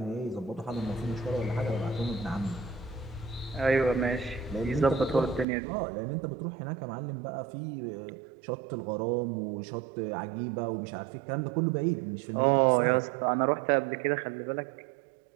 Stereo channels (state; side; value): drops out; left; at 5.5 s